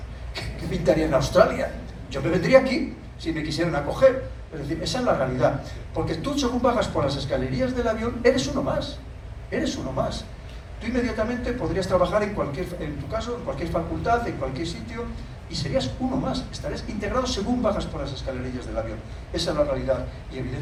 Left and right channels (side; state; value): both; identical; correlation 1.00